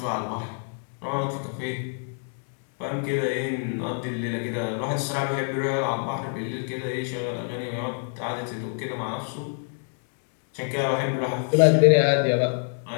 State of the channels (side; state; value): right; silent; 61 dB below the other